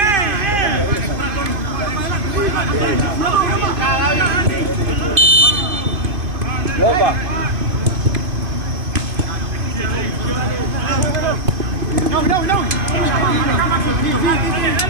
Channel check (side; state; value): left; late; 2.5 ms